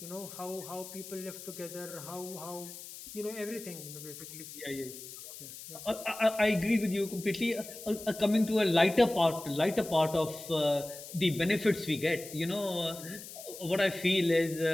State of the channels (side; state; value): left; noise; hiss, 13 dB below the sound